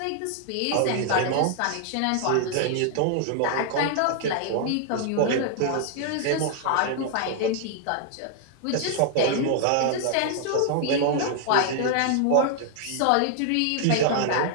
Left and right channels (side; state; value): both; different; correlation 0.00